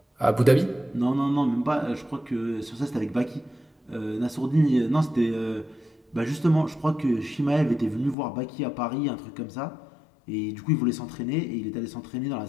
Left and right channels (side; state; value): right; drops out; at 8.2 s